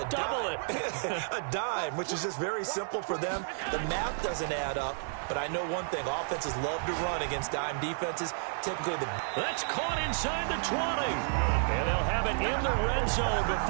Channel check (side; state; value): left; silent; digital silence